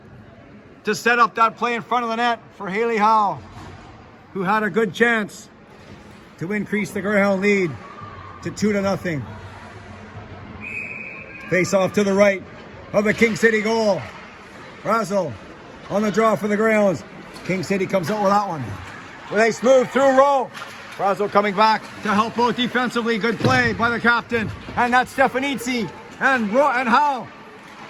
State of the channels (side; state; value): both; identical; correlation 1.00